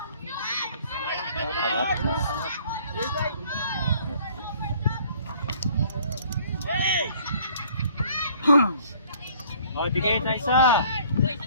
O, bigay na isa.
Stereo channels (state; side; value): inverted; both; correlation -0.57